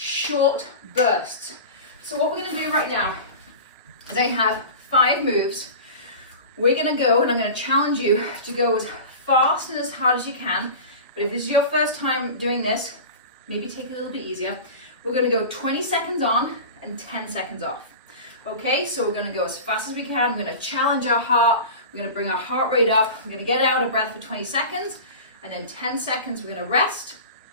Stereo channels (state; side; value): inverted; both; correlation -0.32